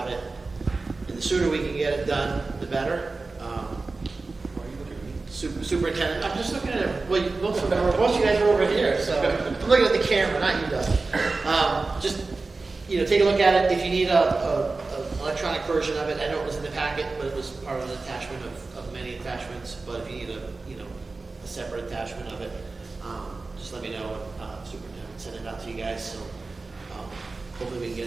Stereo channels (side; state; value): left; quieter; 3.7 dB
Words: it. And the sooner we can get it done, the better. Superintendent, I'm just looking at it. Well, most of you guys are over here, so I'm looking at the camera, not you, Doug. Just take a look at it. If you need a electronic version of it, I know it was in the packet, but it was part of an attachment of many attachments. But if you need a separate attachment of it, just let me know. Superintendent send it out to you guys. So hopefully we can get